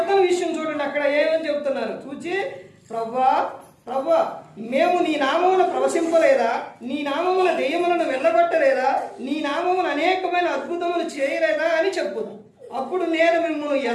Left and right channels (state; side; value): identical; both; correlation 1.00